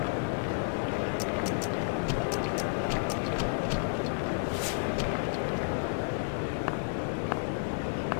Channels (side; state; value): right; silent; 57 dB below the other